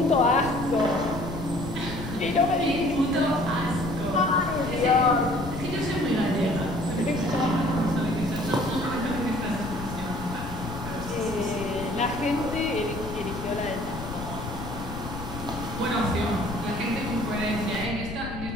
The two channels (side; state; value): left; noise; rumble, 8 dB below the sound